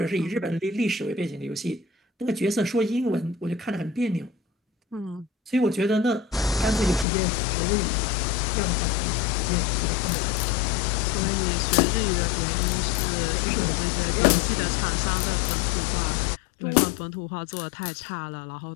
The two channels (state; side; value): drops out; right; at 7.1 s